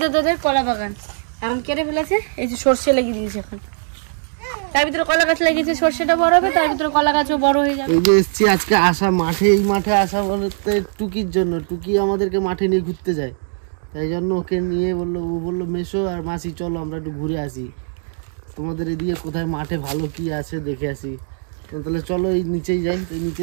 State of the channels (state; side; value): silent; left; digital silence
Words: দাদাদের কলা বাগান, এখন কেটে ফেলেছে। এই যে সর্ষে লেগে দিয়েছে এখন, তার ভিতরে কলা গাছ লেগেছে, সর্ষেটা বড় হবে, তার ভিতরে কলা গাছও বড় হয়ে যাবে। এই যে এসছি আজকে আসা মাঠে, এই মাঠে আসা বলতে টুকির জন্য। টুকি আমাদেরকে মাঠে নিয়ে ঘুরতে যায়, তাই জন্য ওকে নিয়ে বললো, ও বললো মেশো আর মাসি চলো আমরা একটু ঘুরে আসি, তোমাদের এদিকে কোথায় মাঠে ভালো কি আছে দেখে আসি। তাহলে চলো এই নিচেই যাই।